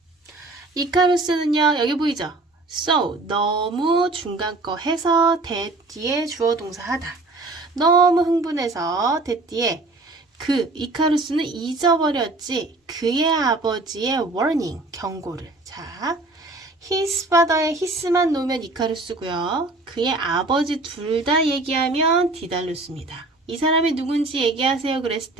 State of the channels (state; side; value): quieter; left; 3.1 dB